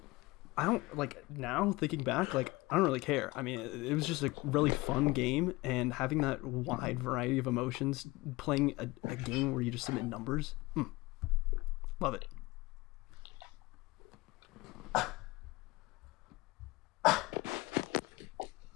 I don't, like, now thinking back, like, I don't really care. I mean, it was just a really fun game, and having that wide variety of emotions, playing a game where you just submit numbers, love it.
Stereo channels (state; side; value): quieter; right; 21.5 dB